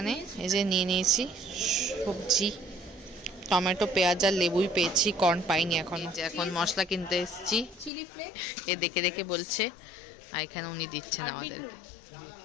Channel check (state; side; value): drops out; right; at 7.9 s